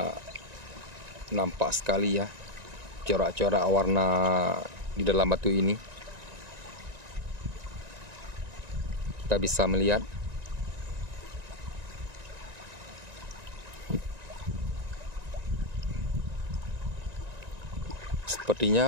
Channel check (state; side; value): late; left; 1.9 ms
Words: nampak sekali ya corak-corak warna di dalam batu ini. Kita bisa melihat